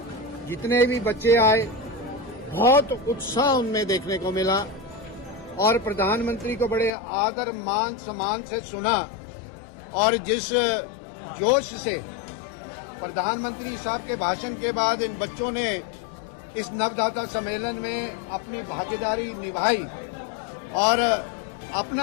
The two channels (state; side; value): drops out; right; at 6.9 s